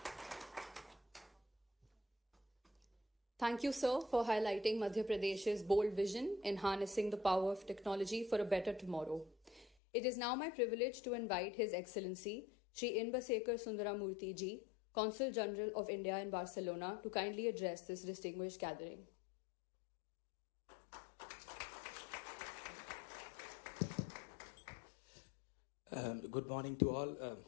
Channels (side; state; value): right; drops out; at 9.7 s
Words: Thank you, sir, for highlighting Madhya Pradesh's bold vision in harnessing the power of technology for a better tomorrow. It is now my privilege to invite His Excellency Shri Inbasekar Sundaramurthy Ji, Consul General of India in Barcelona, to kindly address this distinguished gathering. Good morning to all.